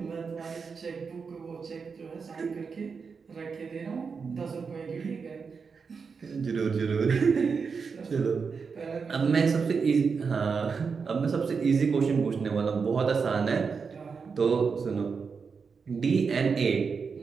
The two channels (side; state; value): left; quieter; 5.4 dB